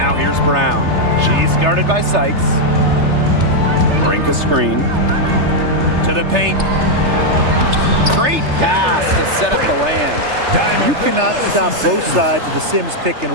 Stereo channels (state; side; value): late; left; 3.3 ms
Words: here's Brown. She's guarded by Sykes. Brink a screen. To the paint. Great pass to set up the lay-in. You cannot stop both sides of the Sims pick and